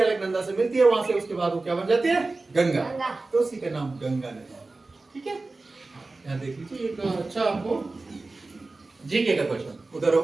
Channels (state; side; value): quieter; left; 3.4 dB